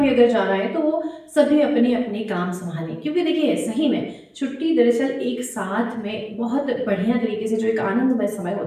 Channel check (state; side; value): identical; both; correlation 1.00